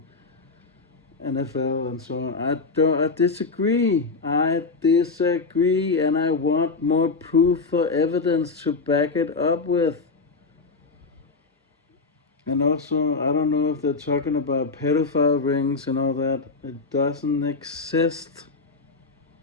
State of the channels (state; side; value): quieter; right; 4.2 dB